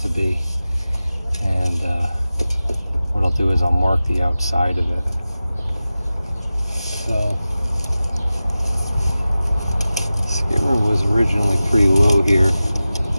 be, and what I'll do is I'll mark the outside of it. So skimmer was originally pretty low here.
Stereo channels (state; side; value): inverted; both; correlation -0.95